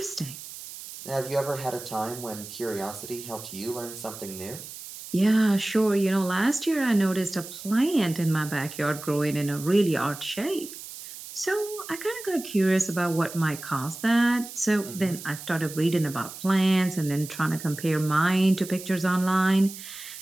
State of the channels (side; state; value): right; noise; hiss, 13 dB below the sound